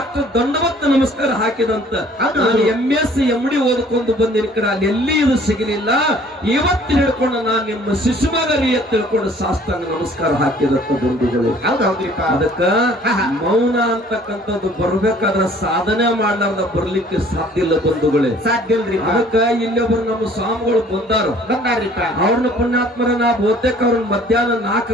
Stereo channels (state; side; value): normal; both; correlation 0.55